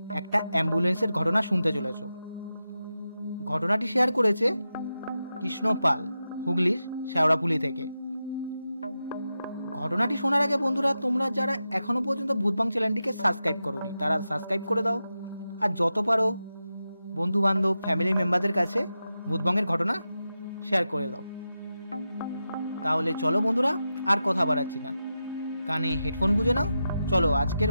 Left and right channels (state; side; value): inverted; both; correlation -0.90